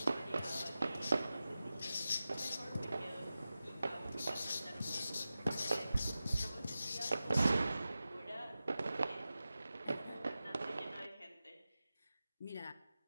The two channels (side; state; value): both; inverted; correlation -0.94